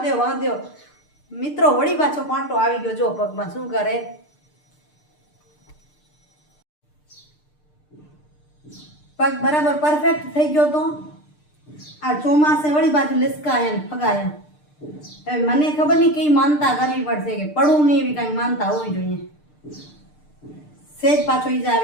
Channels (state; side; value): late; right; 6.7 ms